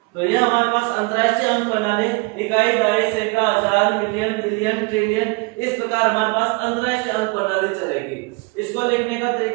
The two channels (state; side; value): quieter; left; 28.4 dB